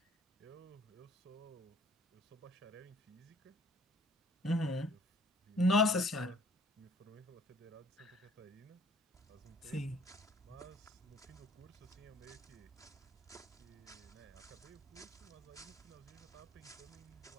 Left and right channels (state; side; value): normal; both; correlation 0.56